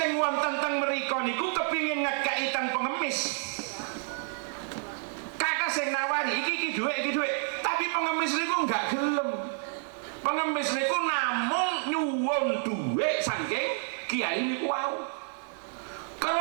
wonten teng mriko niku kepingin ngekeki teng pengemis. Kakak sing nawari iki dhuwit, tapi pengemis niku enggak gelem. Pengemis niku namung nyuwun dhuwit saking kiai niku wau.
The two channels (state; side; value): silent; left; 58 dB below the other